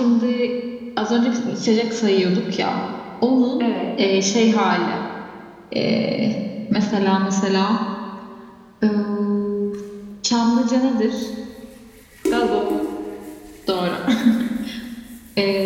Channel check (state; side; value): identical; both; correlation 1.00